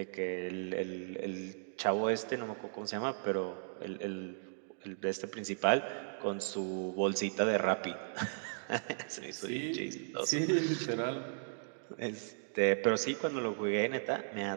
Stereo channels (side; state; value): left; silent; digital silence